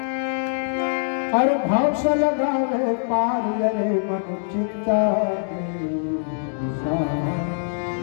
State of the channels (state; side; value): silent; right; digital silence